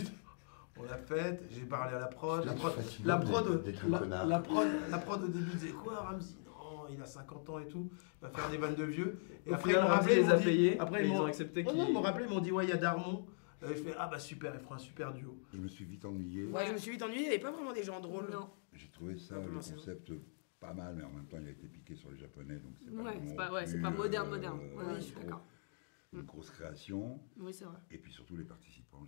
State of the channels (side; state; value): right; silent; digital silence